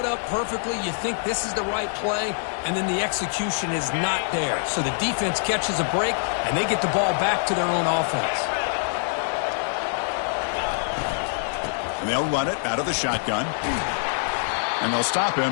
up perfectly. You think this is the right play, and then the execution is not there. So the defense catches a break, and they get the ball back to their own offense. And they'll run it out of the shotgun. And they'll stop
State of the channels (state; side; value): silent; right; digital silence